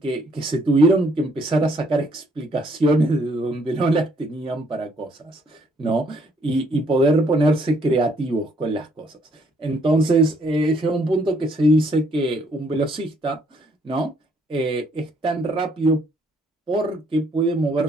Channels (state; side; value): normal; both; correlation 0.67